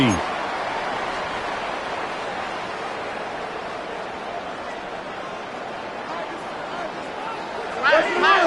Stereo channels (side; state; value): both; identical; correlation 1.00